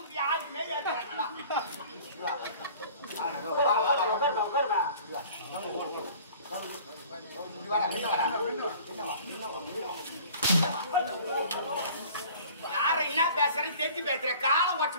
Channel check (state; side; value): inverted; both; correlation -0.47